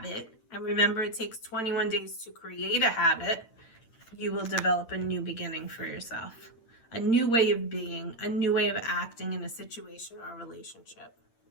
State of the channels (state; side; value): late; right; 8.8 ms